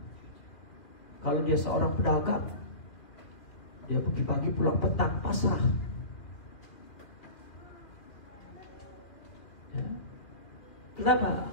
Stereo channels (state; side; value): late; right; 2.4 ms